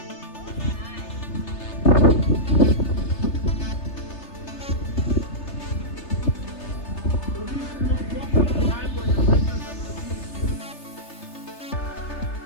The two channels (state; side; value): late; right; 3.3 ms